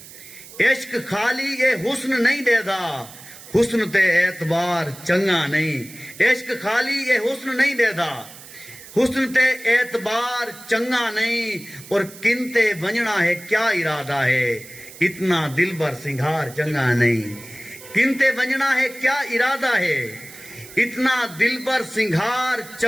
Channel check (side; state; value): right; noise; hiss, 18 dB below the sound